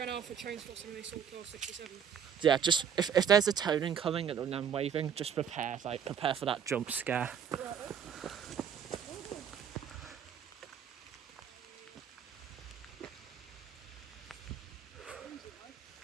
Alpha trains for something they saw till 67. Yeah, just if there's a toning coming and I'm waving, just prepare for that jump scare.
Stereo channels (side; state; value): left; quieter; 7.9 dB